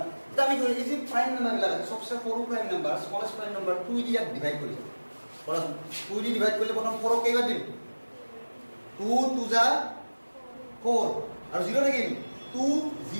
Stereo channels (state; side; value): inverted; both; correlation -1.00